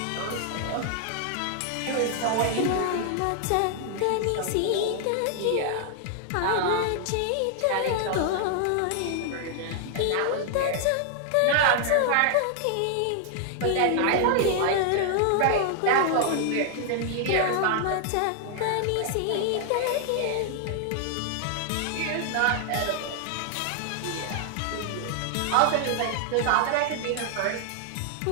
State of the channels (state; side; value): different; both; correlation 0.00